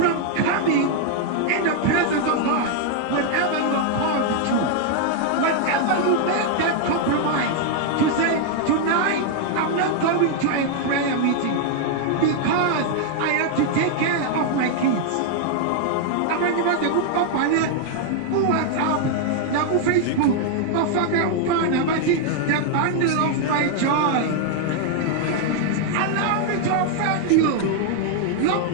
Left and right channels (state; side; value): different; both; correlation 0.00